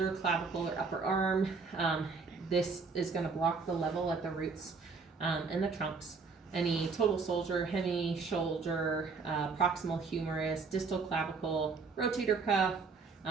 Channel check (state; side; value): quieter; left; 4.7 dB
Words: clavicle, or upper arm. This is going to block the level at the roots and the trunks. Any total shoulder, hemi shoulder, proximal humerus, distal clavicle, rotator cuff.